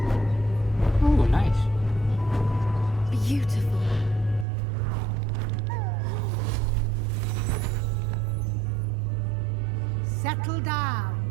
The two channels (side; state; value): left; drops out; at 4.5 s